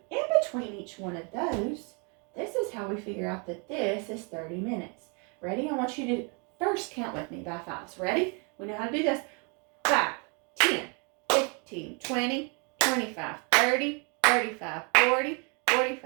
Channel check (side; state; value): left; quieter; 34.7 dB